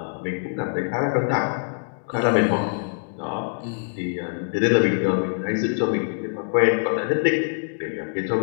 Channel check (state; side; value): silent; right; digital silence